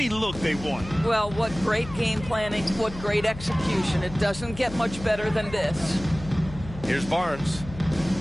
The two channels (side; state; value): left; noise; hum, 13 dB below the sound